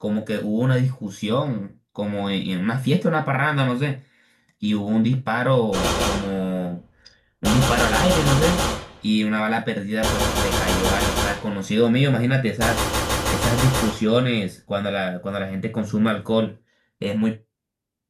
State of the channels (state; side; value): identical; both; correlation 1.00